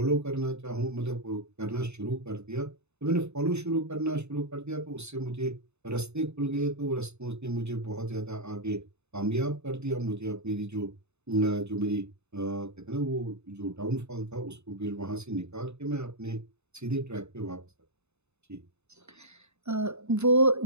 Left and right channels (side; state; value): left; late; 0.81 ms